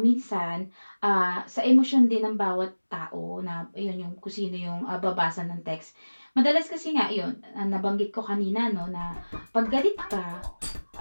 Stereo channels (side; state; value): both; inverted; correlation -1.00